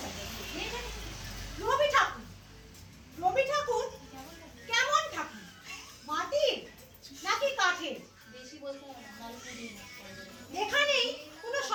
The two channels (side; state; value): both; identical; correlation 1.00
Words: রবি ঠাকুর, রবি ঠাকুর কেমন ঠাকুর, মাটির নাকি কাঠের? এখানেই কোনো